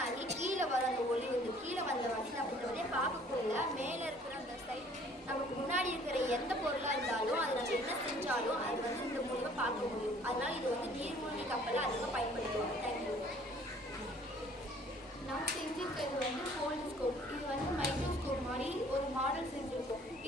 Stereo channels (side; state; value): both; normal; correlation 0.55